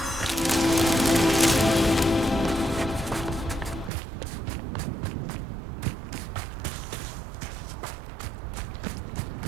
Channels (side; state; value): left; drops out; at 3.9 s